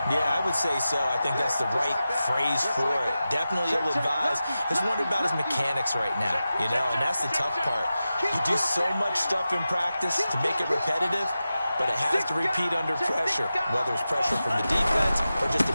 Yeah, I would say so. I think that's the right phrase for it. Definitely ill-advised. Just wondering about his mechanics right now, you know, and that's the tough part. You do so much stuff in practice to make it repetitive, but it has to repeat under pressure, whether it's pressure from the defense or just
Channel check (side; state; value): both; inverted; correlation -0.93